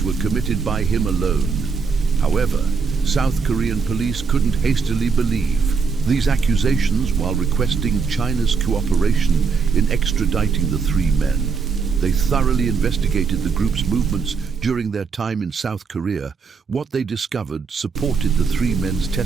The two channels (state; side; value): quieter; left; 5.3 dB